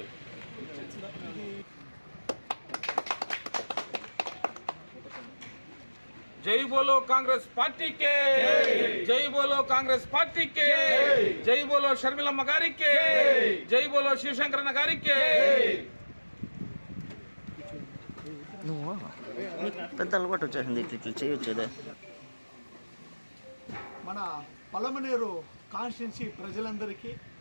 जय बोलो कांग्रेस पार्टी के, जय बोलो कांग्रेस पार्टी के, जय बोलो शर्मिलम्मा गारी के, जय बोलो शिवशंकरन गारी के. పెద్ద అలవాటు వచ్చేసింది ఇట్లా చేయొచ్చేదే. మన పలమనేరు కాన్స్టిట్యున్సీ ప్రజలందరికీ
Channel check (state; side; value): inverted; both; correlation -1.00